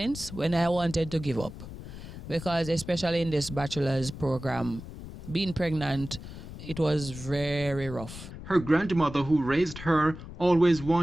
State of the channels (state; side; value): noise; left; rumble, 12 dB below the sound